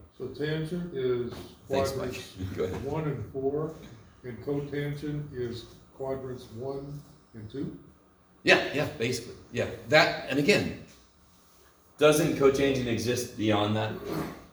So tangent is Thanks, quadrants Mike. Go ahead. 1 and 4, and cotangent is quadrants 1 and 2? Yeah, basically. Yeah. That, and again, doesn't cotangent exist beyond that?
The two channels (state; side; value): identical; both; correlation 1.00